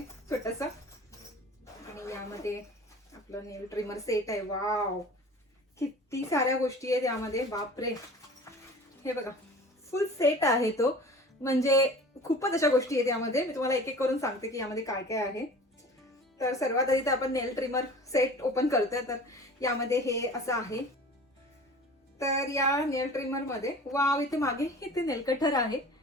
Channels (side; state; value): both; normal; correlation 0.42